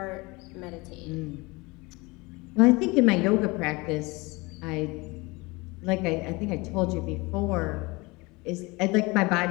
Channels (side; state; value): right; quieter; 24.7 dB